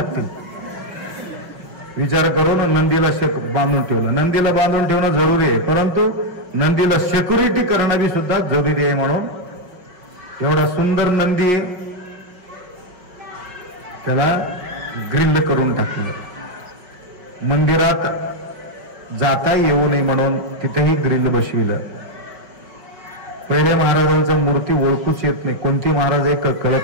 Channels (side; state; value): left; late; 5.5 ms